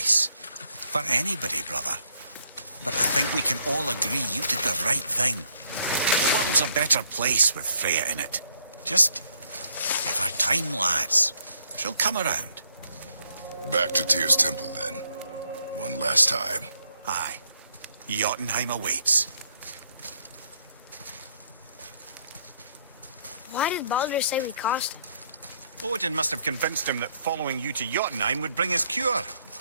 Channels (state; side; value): inverted; both; correlation -0.71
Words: For anybody, brother. But I think we can all agree you did the right thing. The world's a better place with Freya in it. Just give her time, lads. She'll come around. Back to Tyr's temple, then. One last time. Aye. Jotunheim awaits. Why did Baldur say we cost him? Odin must have convinced him that following you to Jotunheim would bring his cure.